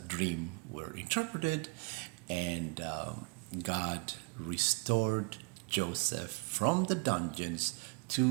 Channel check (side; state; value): left; quieter; 31.5 dB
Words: dream were interpreted, and God restored Joseph from the dungeons